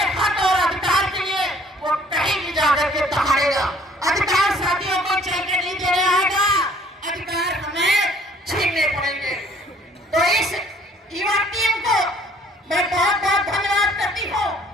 हक और अधिकार के लिए वो कहीं भी जाकर के दहाड़ेगा। अधिकार साथियों को चल के नहीं देने आएगा, अधिकार हमें छीनने पड़ेंगे। तो इस युवा टीम को मैं बहुत बहुत धन्यवाद करती हूँ,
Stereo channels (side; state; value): both; normal; correlation 0.58